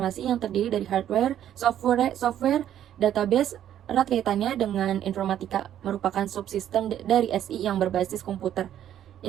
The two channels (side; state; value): left; quieter; 10.9 dB